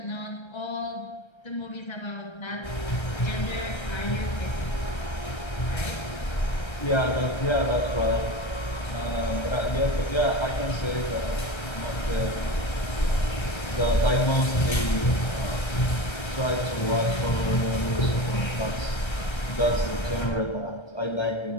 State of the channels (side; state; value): right; late; 1.3 ms